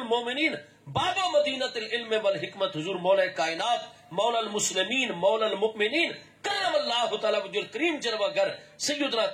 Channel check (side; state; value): both; identical; correlation 1.00